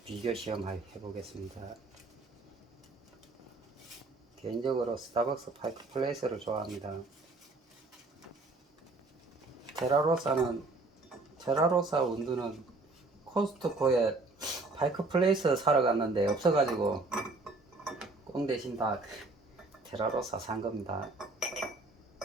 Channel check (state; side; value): quieter; left; 3.3 dB